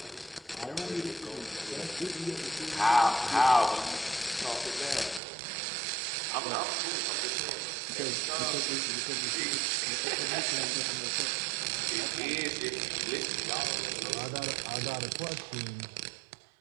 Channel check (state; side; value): drops out; left; at 5.2 s